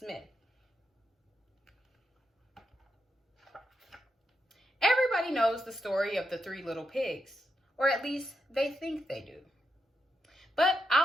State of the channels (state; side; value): normal; both; correlation 0.83